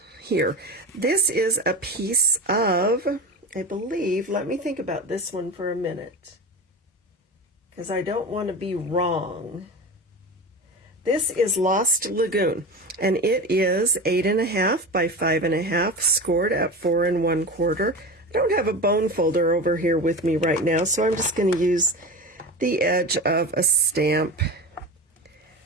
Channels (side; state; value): both; normal; correlation 0.28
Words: here. This is a piece of, I believe, let me think about this one for a minute, because I don't want to be wrong. This is Lost Lagoon, and it is 8 1/2 by 5 1/2, scored at 4 1/4. I don't have a bone folder over here with me right now, so I'm just going to use the edge of a stamp